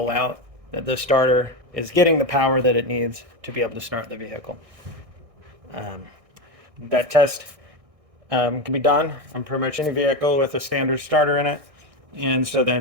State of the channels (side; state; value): left; late; 1.6 ms